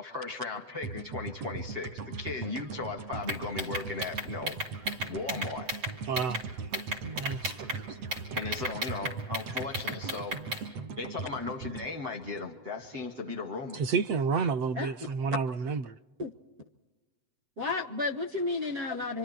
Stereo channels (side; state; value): left; late; 7.9 ms